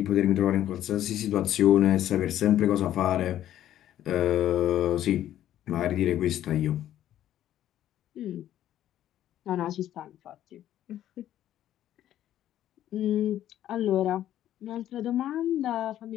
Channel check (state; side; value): quieter; right; 12.1 dB